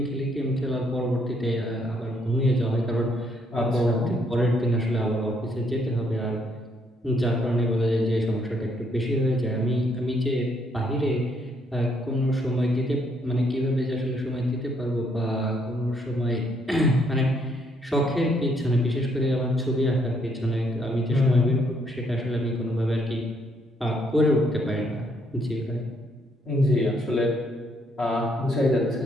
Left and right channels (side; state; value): both; normal; correlation 0.71